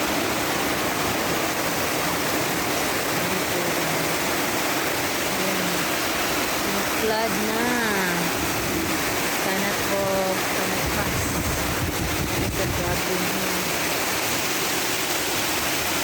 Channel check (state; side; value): identical; both; correlation 1.00